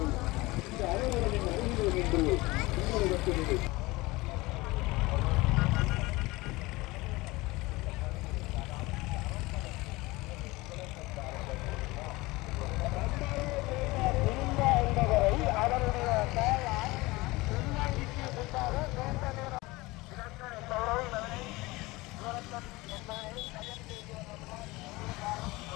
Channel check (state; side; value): quieter; right; 21.6 dB